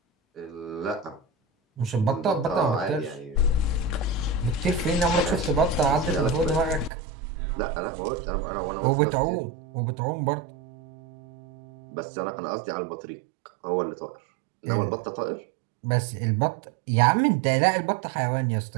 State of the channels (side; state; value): left; drops out; at 6.9 s